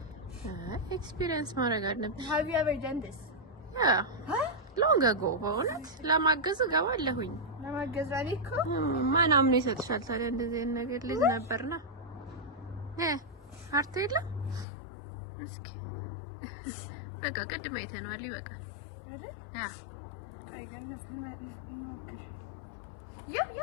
ኤክስፒሪየንስ ማድረግ አለብሽ። have you ever done this? ሎንግ አጎ በእውነት ለማገዝ እገባለሁኝ። ለማገዝ እኮ ማን አምኖ ይሰጥሻል ታዲያ? እንደዚህ አይነት ነገር ልጅ ነበርና አርቶ የለም። እስኪ በቃ ቅድም አይተነዋል። ይበቃል አይደል? ቆይ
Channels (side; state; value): right; drops out; at 14.7 s